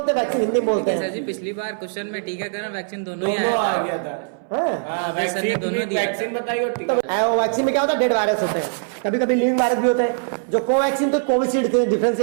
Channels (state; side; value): silent; left; 62 dB below the other